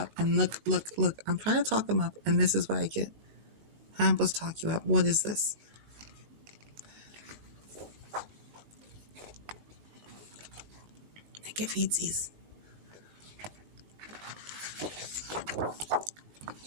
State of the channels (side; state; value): left; late; 19 ms